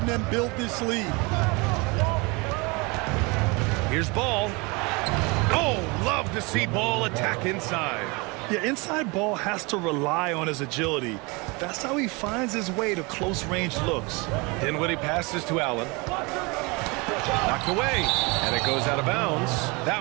them build this lead. Here's Ball. Oh, love to see Ball attack inside. Yeah, inside Ball has to rely on his agility. That's how he finds his way to close-range looks. Dinwiddie passes to Allen. Knocked away, and it goes out of bounds. That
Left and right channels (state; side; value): quieter; left; 27.3 dB